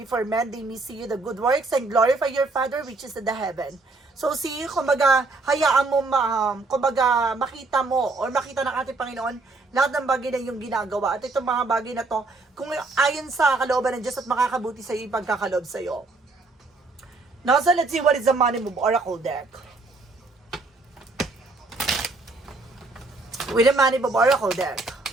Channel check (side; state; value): left; quieter; 3.5 dB